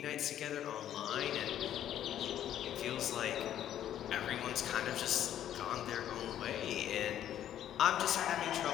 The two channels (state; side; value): quieter; right; 11.0 dB